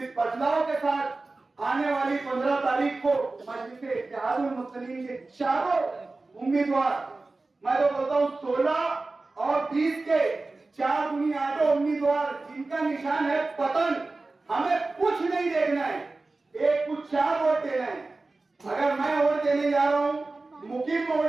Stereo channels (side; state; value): left; quieter; 3.4 dB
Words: बदलाव के साथ आने वाली 15 तारीख को मजलिस इत्तेहादुल मुस्लिमीन के चारों उम्मीदवार, मैं तो बोलता हूँ 16 और 20 के 4 दूनी 8 उम्मीदवार जिनका निशान है पतन, हमें कुछ नहीं देखना है, एक कुछ 4 वोट देना है। अगर मैं वोट देने जा रहा हूं, मुकीम